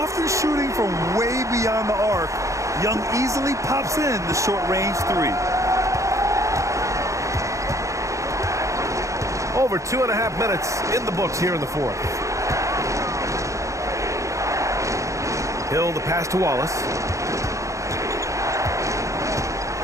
shooting from way beyond the arc. Young easily pops in the short-range three. Over 2.5 minutes in the books here in the fourth. Hill, the pass to Wallace.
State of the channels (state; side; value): late; left; 0.15 ms